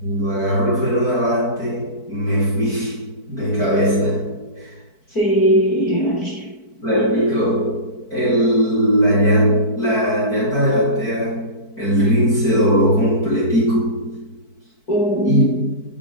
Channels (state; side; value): late; right; 4.6 ms